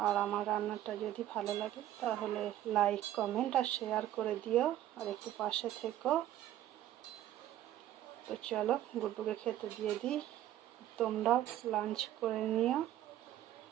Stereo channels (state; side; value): quieter; left; 12.7 dB